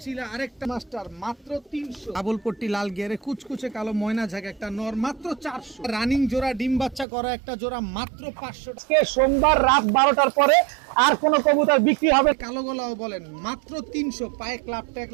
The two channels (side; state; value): left; drops out; at 7.1 s